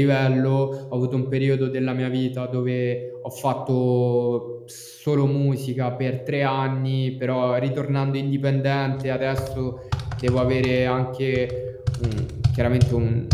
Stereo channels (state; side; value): identical; both; correlation 1.00